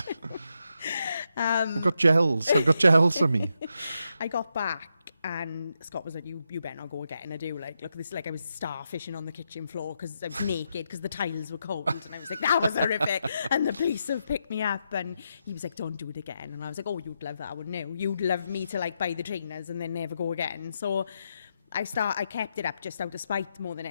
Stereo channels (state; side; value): inverted; both; correlation -0.84